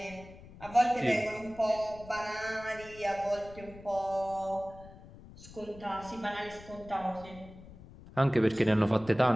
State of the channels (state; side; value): noise; left; rumble, 18 dB below the sound